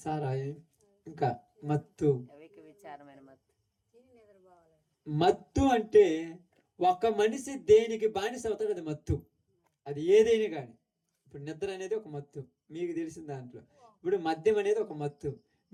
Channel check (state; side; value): identical; both; correlation 1.00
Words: సారాయి, ఇంకా మత్తు. మత్తు అంటే ఒక మనిషి దేనికి బానిస అవుతాడు, అది మత్తు. అది ఏదైనా కానీ. ఇప్పుడు నిద్ర అనేది ఒక మత్తు మీకు తెలిసిన దాంట్లో. ఇప్పుడు మద్యం అనేది ఒక మత్తు